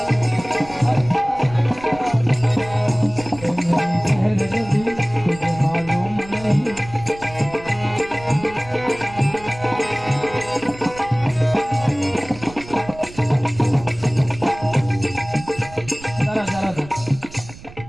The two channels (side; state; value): right; noise; rumble, 17 dB below the sound